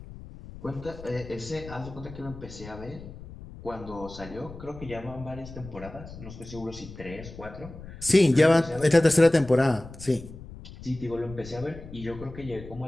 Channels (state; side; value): noise; left; rumble, 15 dB below the sound